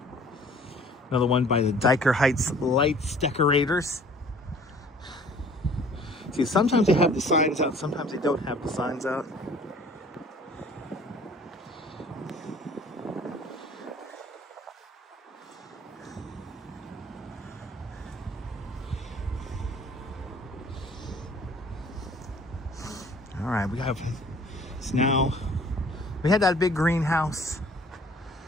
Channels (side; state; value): both; normal; correlation 0.52